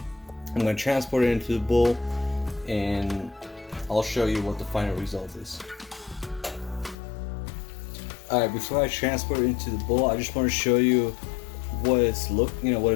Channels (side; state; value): right; drops out; at 7.0 s